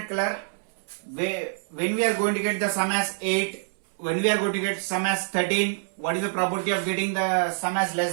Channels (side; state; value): left; silent; 61 dB below the other